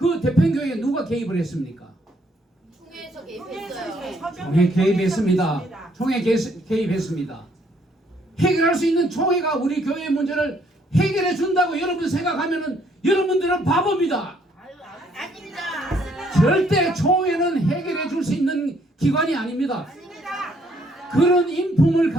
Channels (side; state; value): both; normal; correlation 0.67